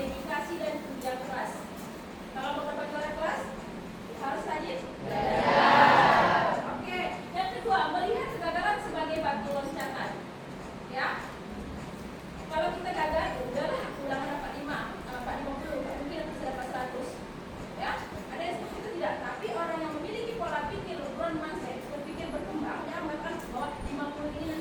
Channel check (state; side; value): identical; both; correlation 1.00